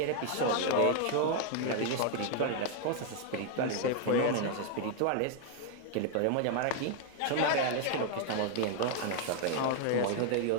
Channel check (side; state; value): both; different; correlation 0.00